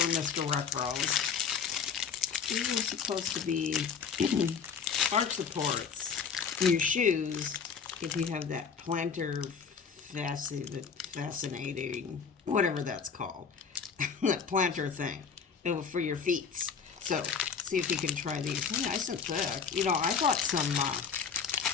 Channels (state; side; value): quieter; right; 6.3 dB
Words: Mr. Wrinkles. These are supposed to be arch supports in your shoes if you have that plantar fascinating, whatever that's called, that plantar thing for your feet. So see if you can try these. They're nice and thick. You know, I bought some, I